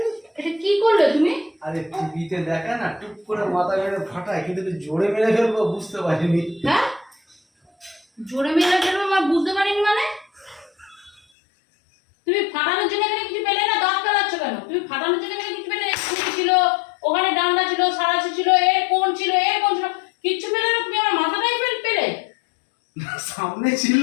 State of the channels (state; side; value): drops out; right; at 11.2 s